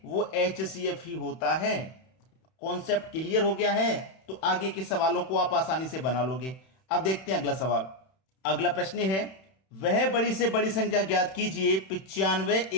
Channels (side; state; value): right; late; 31 ms